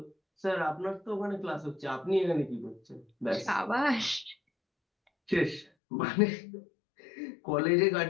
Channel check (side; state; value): right; drops out; at 5.7 s